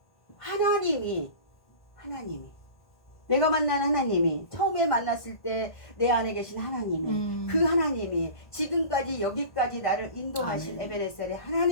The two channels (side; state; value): right; late; 1.5 ms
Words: 하나님이 내가 만난 하나님이 처음에 만났을 때 내 안에 계신 하나님이 그 하나님이 지금까지 여기까지 나를 인도하신 에베네셀의